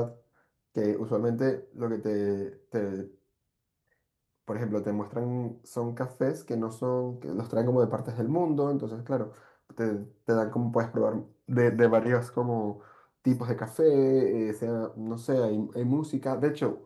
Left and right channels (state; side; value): identical; both; correlation 1.00